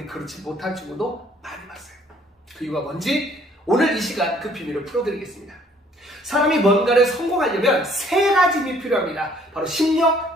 그렇지 못한 친구도 많이 봤어요. 그 이유가 뭔지 오늘 이 시간 그 비밀을 풀어드리겠습니다. 사람이 뭔가를 성공하려면 세 가지 힘이 필요합니다. 바로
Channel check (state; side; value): normal; both; correlation 0.60